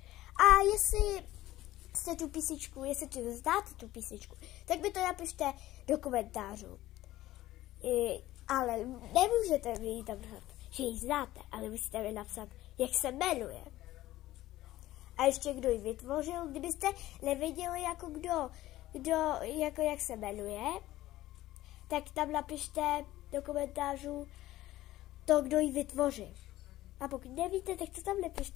A jestli jste tu písničku, jestli tu znáte tu písničku, tak mi to napište do komentářů. Ale nemůžete mi ji tam napsat, že ji znáte, ale musíte mi napsat, jak se jmenuje. A ještě kdo ji vytvořil, kdybyste nevěděli, jako jak se jmenuje, tak tam napište do komentářů to, kdo ji vytvořil. A pokud nevíte, tak to tam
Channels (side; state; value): right; quieter; 15.6 dB